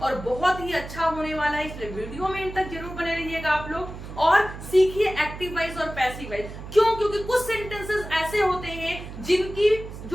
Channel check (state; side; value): noise; right; hum, 11 dB below the sound